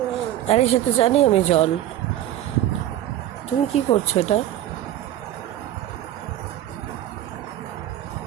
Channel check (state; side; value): quieter; left; 12.9 dB